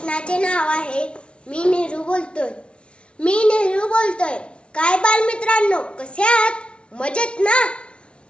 नाव आहे मी नेहरू बोलतोय. काय बालमित्रांनो, कसे आहात? मजेत ना?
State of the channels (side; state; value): right; late; 0.058 ms